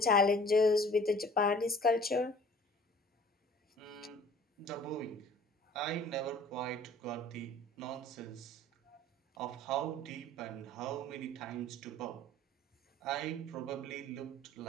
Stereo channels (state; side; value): normal; both; correlation 0.50